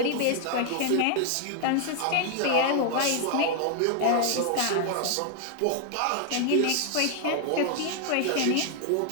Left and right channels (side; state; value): both; different; correlation 0.00